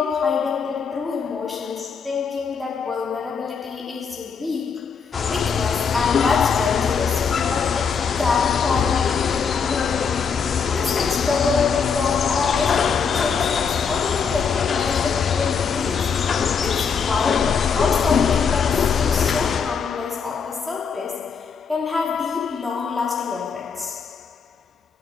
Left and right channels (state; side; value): quieter; right; 6.0 dB